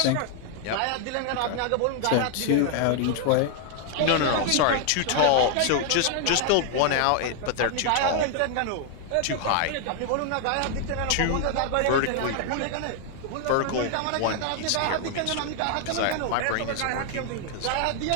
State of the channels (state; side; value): different; both; correlation 0.00